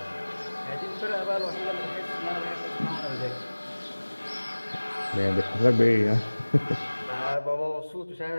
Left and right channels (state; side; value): inverted; both; correlation -1.00